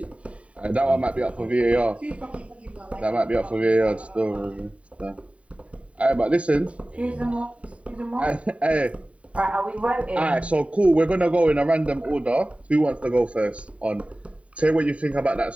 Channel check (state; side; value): late; left; 0.064 ms